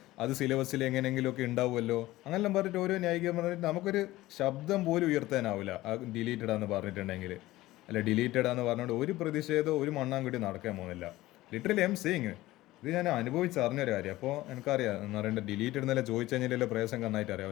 അത് സിലബസിൽ എങ്ങനെയെങ്കിലുമൊക്കെ ഉണ്ടാവുമല്ലോ, അങ്ങനെല്ലാം പറഞ്ഞിട്ട് ഓരോ ന്യായീകരണം പറഞ്ഞിട്ട് നമുക്കൊരു ശബ്ദം പോലും ഉയർത്താനാവില്ല ആ ഡിലീറ്റഡാന്ന് പറഞ്ഞിട്ടുണ്ടെങ്കിൽ. അല്ല ഡിലീറ്റഡാന്ന് പറഞ്ഞുകൊണ്ട് ഒരു പ്രതിഷേധം ഒരു മണ്ണാൻകുട്ടി നടക്കാൻ പോകുന്നില്ല. ലിറ്ററലി ഐ എം സേയിങ്, ഇത് ഞാൻ അനുഭവിച്ചറിഞ്ഞൊരു കാര്യം. അപ്പോൾ എനിക്കറിയാം എന്ന് പറയേണ്ടത് ഡിലീറ്റഡ് എന്നല്ല ചോദിച്ചു കഴിഞ്ഞാൽ പ്രയാസം നന്നായിട്ട് അറിയാം.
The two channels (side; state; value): right; quieter; 17.3 dB